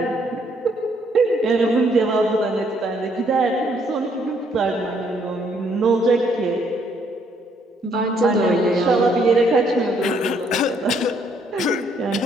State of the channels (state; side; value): normal; both; correlation 0.69